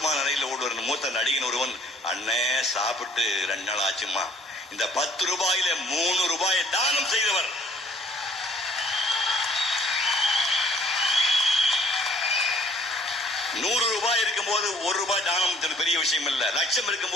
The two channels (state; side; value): normal; both; correlation 0.59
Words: நிலையில் ஓடுவார் மூத்த நடிகன் ஒருவன், அண்ணே சாப்பிட்டு 2 நாள் ஆச்சுமா, இந்த 10 ரூபாயில 3 ரூபாயை தானம் செய்தவர். ₹100 இருக்கும் போது 1 ரூபாய் தானம் பெரிய விஷயம் இல்ல. லட்சம் இருக்கும்